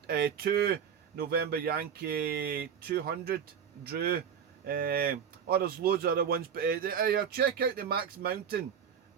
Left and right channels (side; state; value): left; quieter; 7.7 dB